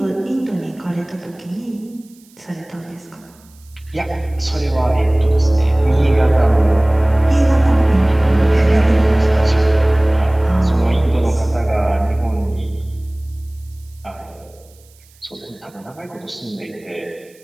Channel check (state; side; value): noise; right; hiss, 29 dB below the sound